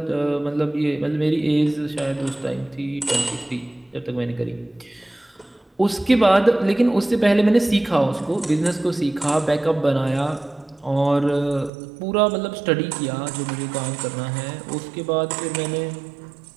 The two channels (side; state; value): left; drops out; at 11.7 s